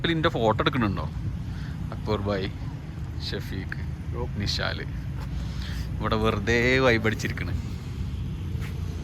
എൻ്റെ ഫോട്ടോ എടുക്കുന്നുണ്ടോ? അക്ബർ ബായി, ഷഫീഖ്, നിഷാൽ ഇവിടെ വെറുതെ വൈബടിച്ചിരിക്കണ്.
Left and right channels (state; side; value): identical; both; correlation 1.00